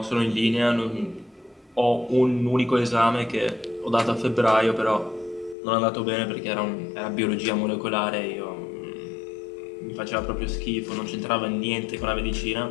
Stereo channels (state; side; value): drops out; right; at 5.6 s